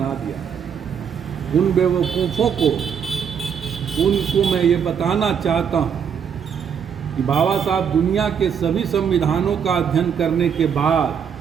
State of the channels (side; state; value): left; quieter; 7.4 dB